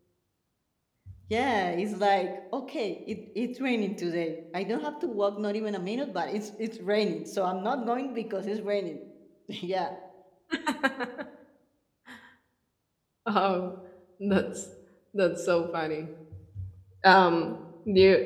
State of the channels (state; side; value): identical; both; correlation 1.00